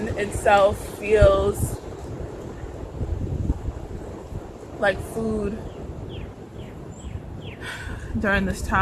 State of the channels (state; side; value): identical; both; correlation 1.00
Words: itself feels like food during this